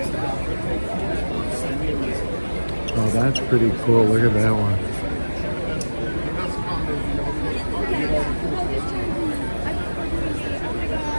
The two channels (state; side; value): inverted; both; correlation -1.00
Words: Oh, that's pretty cool. Look at that one.